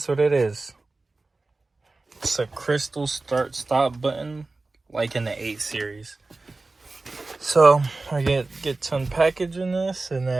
what it is? It's a crystal start stop button, like in the 8 series. So I get to unpackaging this, and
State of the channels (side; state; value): left; quieter; 3.4 dB